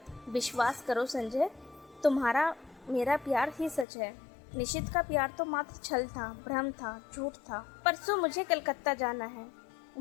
विश्वास करो संजय, तुम्हारा मेरा प्यार ही सच है। निशित का प्यार तो मात्र छल था, भ्रम था, झूठ था। परसों मुझे कलकत्ता जाना है,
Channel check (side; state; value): right; drops out; at 3.9 s